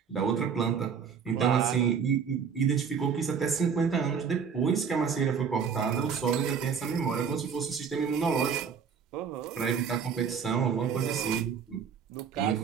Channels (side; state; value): left; quieter; 6.6 dB